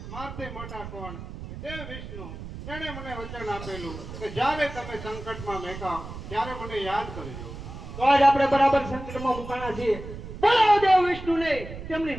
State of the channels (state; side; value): noise; right; rumble, 11 dB below the sound